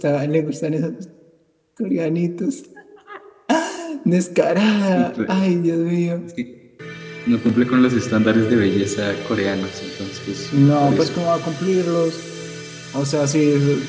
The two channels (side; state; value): both; identical; correlation 1.00